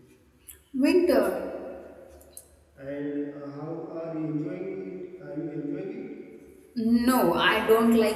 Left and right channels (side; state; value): both; identical; correlation 1.00